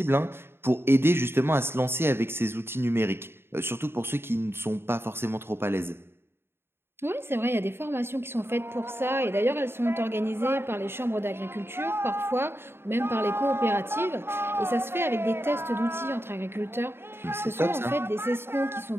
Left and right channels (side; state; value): left; late; 0.11 ms